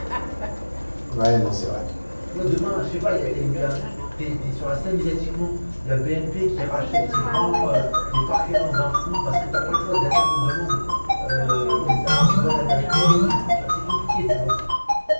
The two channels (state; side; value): inverted; both; correlation -1.00